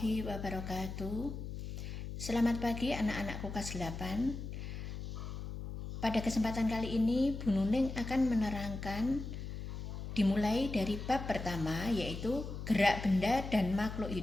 wabarakatuh. Selamat pagi anak-anakku kelas 8. Pada kesempatan kali ini Bu Nuning akan menerangkan dimulai dari bab pertama, yaitu gerak benda dan makhluk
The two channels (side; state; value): left; noise; hum, 7 dB below the sound